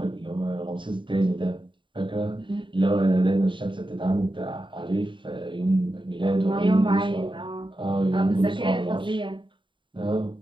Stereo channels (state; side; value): late; left; 0.24 ms